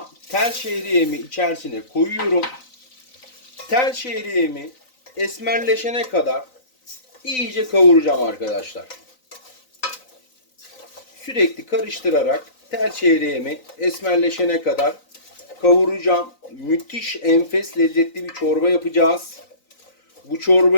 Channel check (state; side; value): late; right; 3.9 ms